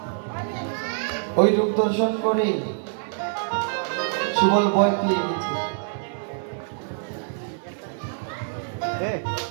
ওই রূপ দর্শন করে সুবল ভয় পেয়ে গেছে।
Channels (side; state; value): left; silent; 57 dB below the other